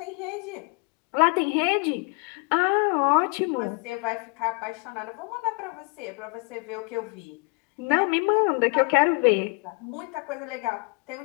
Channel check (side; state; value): right; quieter; 33.6 dB